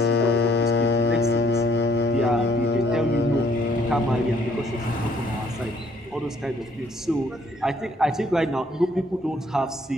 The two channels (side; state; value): both; normal; correlation 0.65